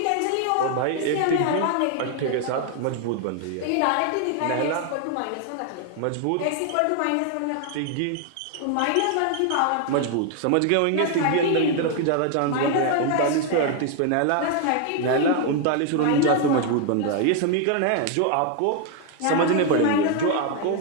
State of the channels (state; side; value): different; both; correlation 0.00